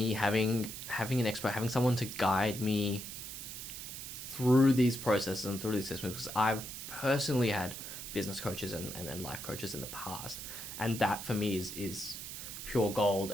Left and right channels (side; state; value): right; noise; hiss, 9 dB below the sound